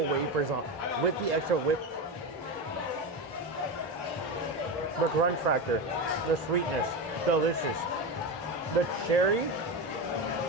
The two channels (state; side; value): normal; both; correlation 0.18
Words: wafers on with the extra whip, the crunch factor, the sweetness, delicious. The cherry,